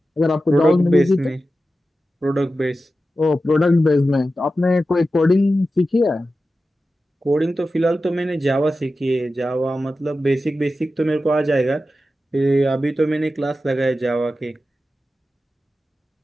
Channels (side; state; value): both; normal; correlation 0.93